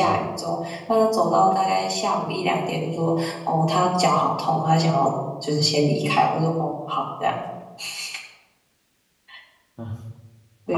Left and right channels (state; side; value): identical; both; correlation 1.00